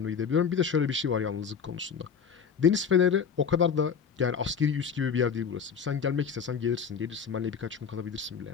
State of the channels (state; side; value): quieter; right; 6.6 dB